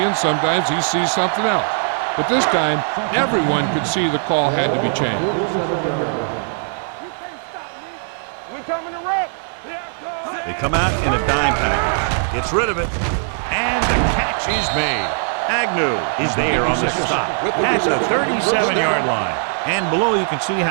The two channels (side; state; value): left; silent; 63 dB below the other